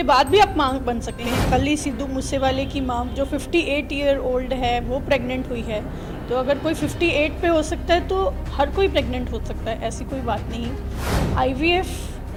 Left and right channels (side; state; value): both; identical; correlation 1.00